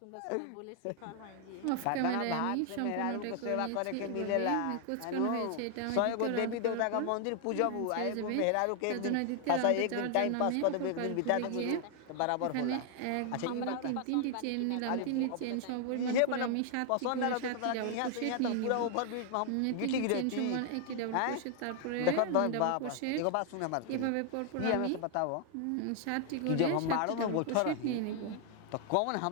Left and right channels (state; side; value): different; both; correlation 0.00